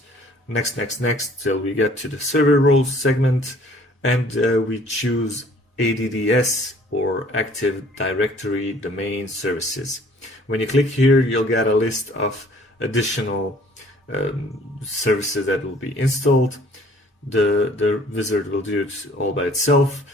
next till we get to the server roles segment, and we choose ADDS or Active Directory Domain Services. When you click here, you'll get a list of additional services that will be installed. The wizard will do it all by itself.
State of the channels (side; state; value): both; normal; correlation 0.56